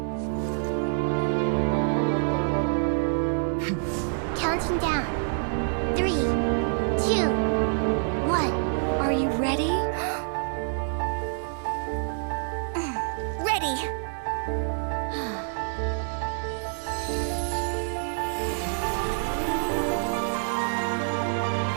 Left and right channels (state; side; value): silent; left; 58 dB below the other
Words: down. 3, 2, 1. Are you ready? Ready.